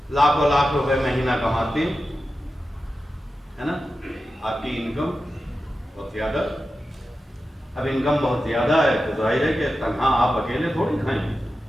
لاکھوں لاکھ روپے مہینہ کماتے ہیں، ہے نا، آپ کی انکم بہت زیادہ، اب انکم بہت زیادہ ہے تو ظاہر ہے کہ تنہا آپ اکیلے تھوڑی کھائیں گے،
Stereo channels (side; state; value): both; normal; correlation 0.92